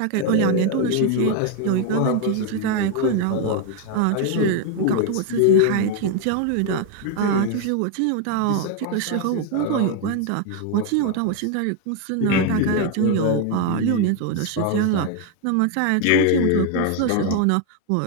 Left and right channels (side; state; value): both; different; correlation 0.01